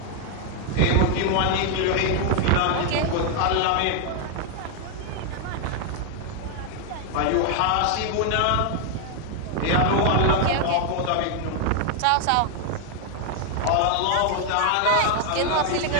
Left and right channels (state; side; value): different; both; correlation 0.00